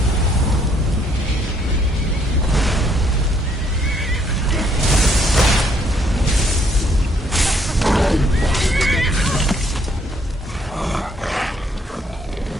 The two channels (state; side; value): normal; both; correlation 0.68